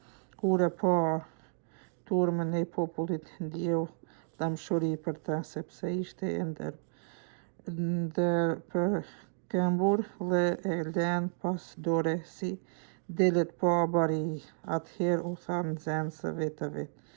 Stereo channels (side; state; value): left; silent; digital silence